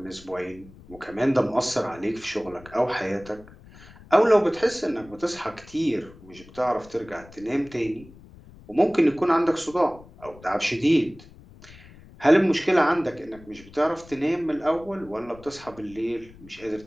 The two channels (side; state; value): left; noise; rumble, 21 dB below the sound